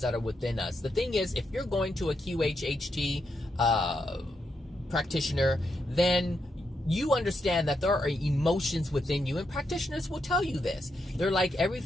that are within us. The thing is, if you're going to a QHHT practitioner, then you understand that there are emotions within you, and practitioners will tell you this. They're like,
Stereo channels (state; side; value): normal; both; correlation 0.82